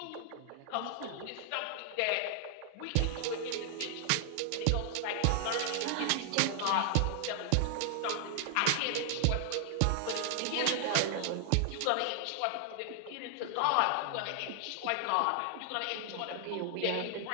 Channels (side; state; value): both; different; correlation -0.01